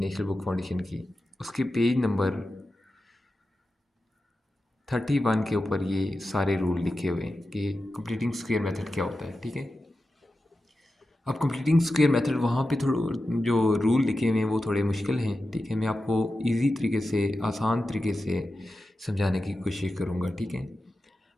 बुक फाउंडेशन की, उसके पेज नंबर 31 के ऊपर ये सारे रूल लिखे हुए हैं कि कंप्लीटिंग स्क्वायर मेथड क्या होता है, ठीक है। अब कंप्लीटिंग स्क्वायर मेथड वहाँ पे थोड़ा जो रूल लिखे हुए हैं वो थोड़े मुश्किल हैं, ठीक है। मैं आपको इजी तरीके से, आसान तरीके से समझाने की कोशिश करूँगा, ठीक है।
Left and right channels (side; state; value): both; normal; correlation 0.92